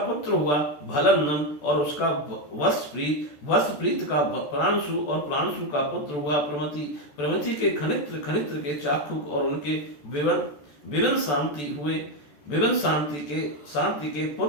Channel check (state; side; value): late; right; 14 ms